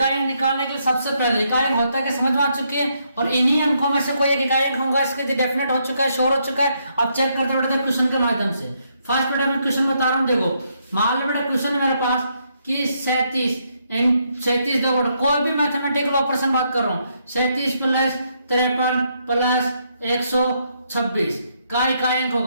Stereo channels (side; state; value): both; inverted; correlation -0.75